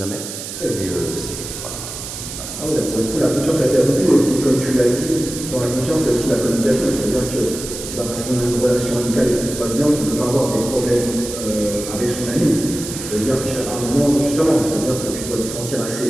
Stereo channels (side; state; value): right; noise; hiss, 9 dB below the sound